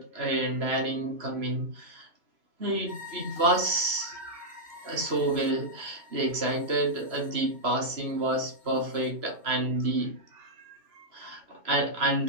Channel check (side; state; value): left; late; 3.0 ms